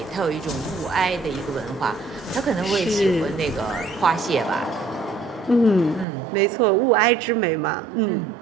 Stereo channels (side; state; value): left; drops out; at 6.1 s